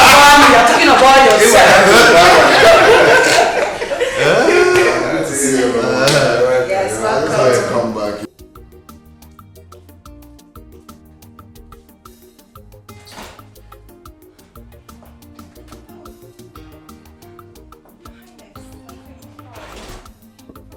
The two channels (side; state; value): both; identical; correlation 1.00